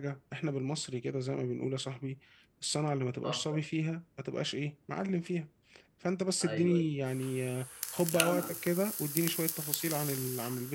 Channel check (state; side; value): identical; both; correlation 1.00